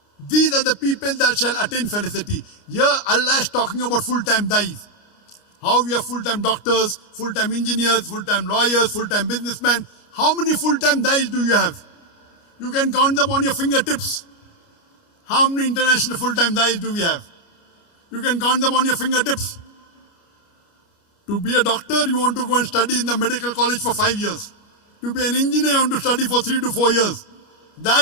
These are the people that shall attain felicity. Here Allah is talking about full-time dais. How we have full-time doctors, full-time engineers, full-time lawyers, full-time businessmen. How many full-time dais do you have? You can count them on your fingertips. How many international full-time dais do we have? You can count them on your fingertips. To be a doctor, you want to go and study in the medical college for 5 years. To be an engineer, you want to study for 3 to 4 years. Dai,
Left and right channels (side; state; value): right; late; 29 ms